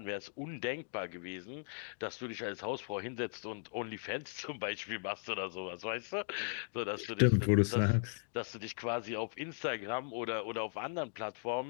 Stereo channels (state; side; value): silent; right; digital silence